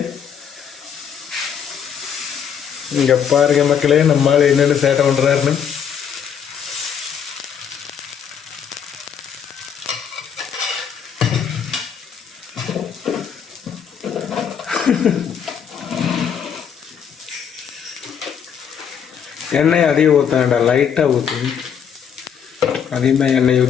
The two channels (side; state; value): right; quieter; 7.8 dB